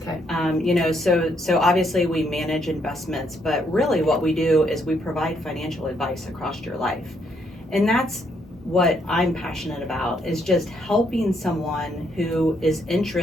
Okay. So obviously we manage investments, but really what we do is we provide financial advice across your life. And that's what I'm passionate about, is just helping someone who is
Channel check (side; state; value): both; normal; correlation 0.73